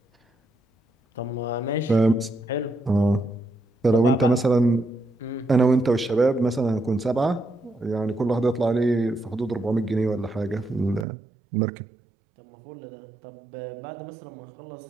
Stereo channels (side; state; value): left; drops out; at 11.1 s